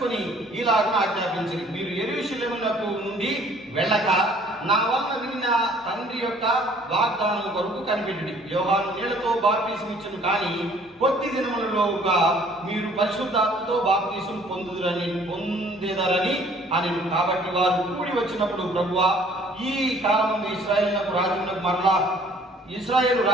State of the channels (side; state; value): both; normal; correlation 0.57